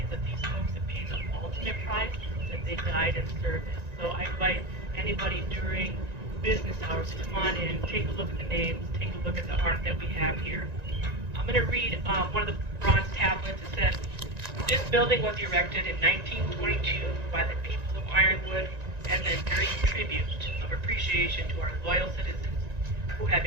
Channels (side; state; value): left; late; 1.9 ms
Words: that these folks have paid the ultimate price, that they died in service. So I invite anybody during business hours to come on in, take a look at the names, take a look at the art that we have here. I'm going to read one of the bronze tablets. It says, this building was erected in 1922 by the people of Ironwood as an enduring tribute of appreciation to our loyal citizens who have